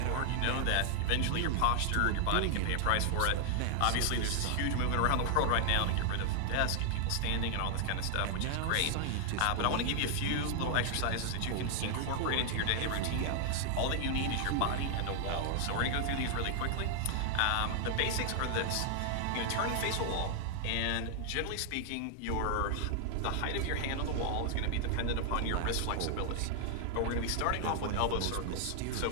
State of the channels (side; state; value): both; different; correlation 0.00